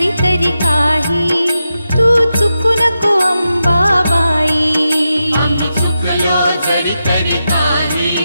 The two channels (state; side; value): inverted; both; correlation -0.88